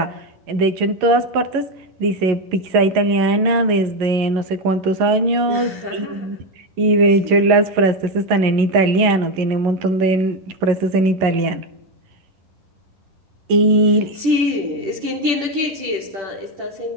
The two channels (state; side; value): late; left; 11 ms